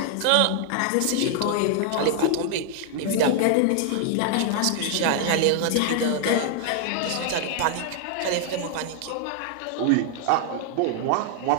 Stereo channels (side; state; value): both; different; correlation 0.00